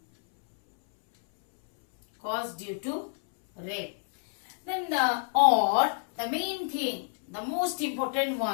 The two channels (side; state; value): right; silent; 59 dB below the other